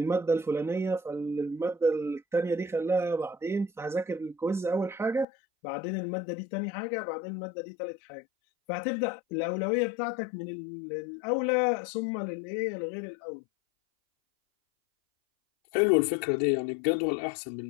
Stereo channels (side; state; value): right; drops out; at 5.2 s